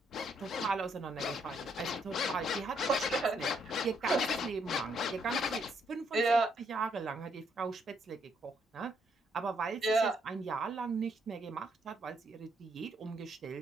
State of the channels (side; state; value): both; normal; correlation 0.73